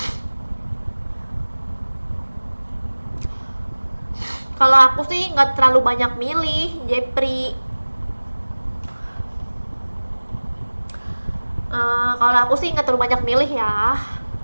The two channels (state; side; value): inverted; both; correlation -1.00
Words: Kalau aku sih nggak terlalu banyak milih, Jepri. Kalau aku sih nggak terlalu banyak milih ya.